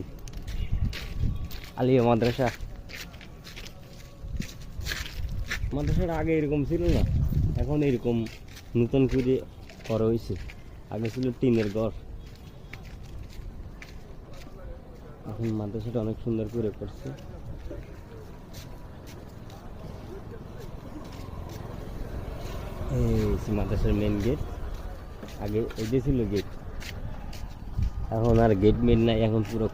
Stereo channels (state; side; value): identical; both; correlation 1.00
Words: আলিয়া মাদ্রাসা। মাদ্রাসার আগে এরকম ছিল না, এখন এরকম নতুন করে করা হয়েছে। আগে ছিল টিনের ঘর, এখন মাদ্রাসাটা অনেক সুন্দর করে করছে। এই মাদ্রাসার মেন গেট। আগে এটা ছিল গেট, এখন আর গেট মেন নাই, এখন পুরো